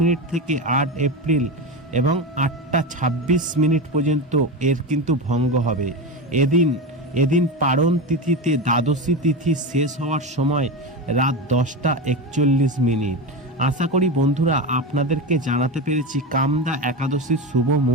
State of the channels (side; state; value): both; normal; correlation 0.19